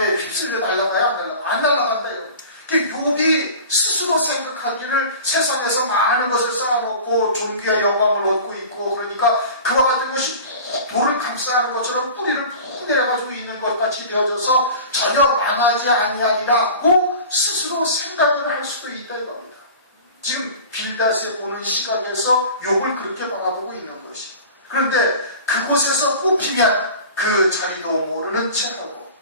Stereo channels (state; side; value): inverted; both; correlation -0.38